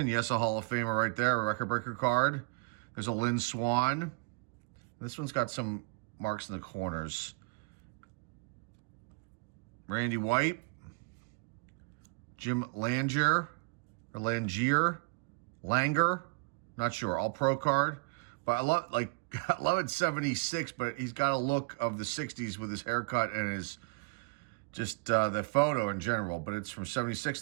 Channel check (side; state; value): left; quieter; 29.2 dB